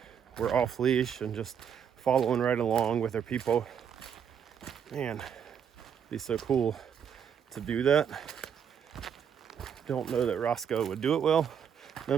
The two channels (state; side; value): quieter; left; 7.9 dB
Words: were off leash and just following right along with their people. Man, it'd be so cool to do that. Don't know that Roscoe would do it well.